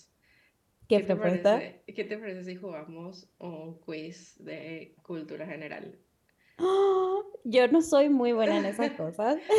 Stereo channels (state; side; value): identical; both; correlation 1.00